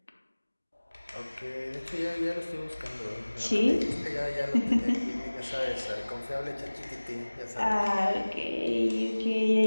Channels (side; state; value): both; inverted; correlation -1.00